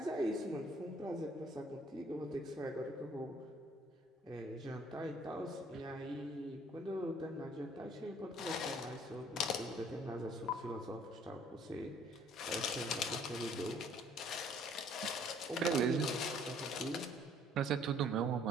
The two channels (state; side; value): normal; both; correlation 0.59